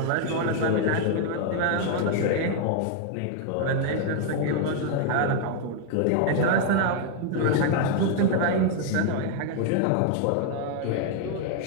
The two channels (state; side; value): different; both; correlation 0.00